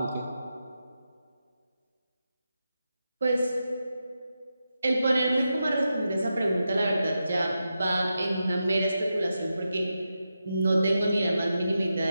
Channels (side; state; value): both; inverted; correlation -0.89